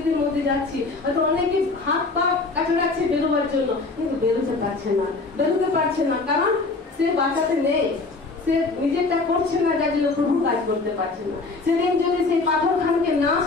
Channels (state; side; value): quieter; right; 3.7 dB